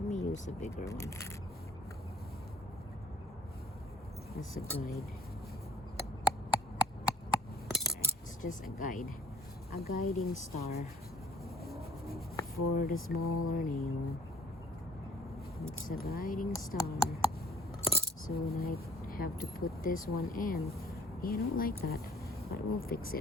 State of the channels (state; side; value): normal; both; correlation 0.55